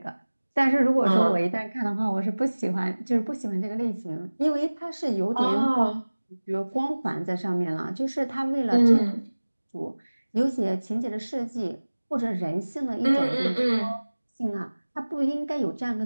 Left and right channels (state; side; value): inverted; both; correlation -1.00